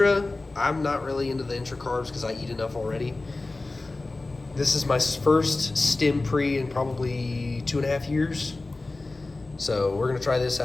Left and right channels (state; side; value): quieter; right; 3.2 dB